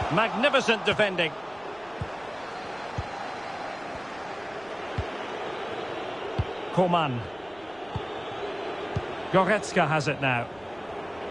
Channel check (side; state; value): right; noise; rumble, 26 dB below the sound